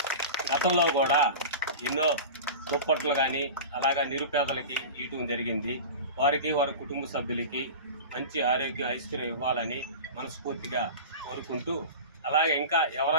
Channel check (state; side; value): inverted; both; correlation -0.31